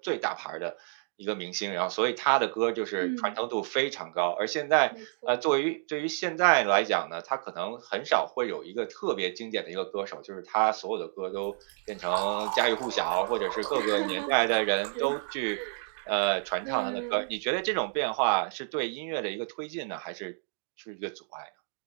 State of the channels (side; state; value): left; silent; digital silence